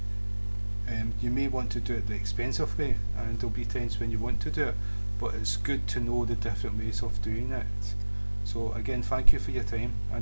You may want to do it the expensive way, and there'll be times when you want to do it, but it's good to know the different ways of doing it. So again, thank you for your time,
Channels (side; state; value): both; inverted; correlation -1.00